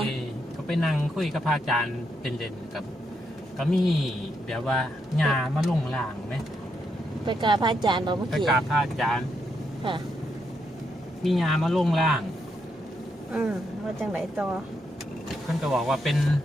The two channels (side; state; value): both; normal; correlation 0.80